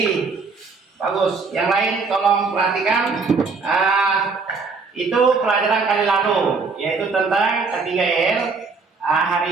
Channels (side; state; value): left; quieter; 4.5 dB